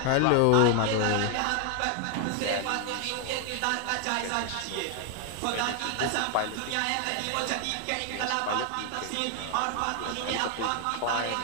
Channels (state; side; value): different; both; correlation 0.00